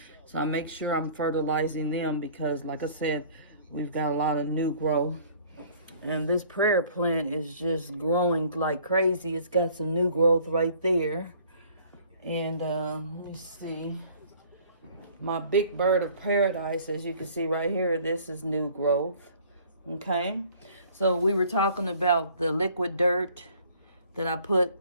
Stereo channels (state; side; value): inverted; both; correlation -0.54